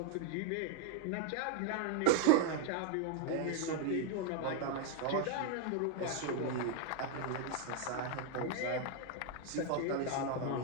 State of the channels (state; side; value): different; both; correlation 0.00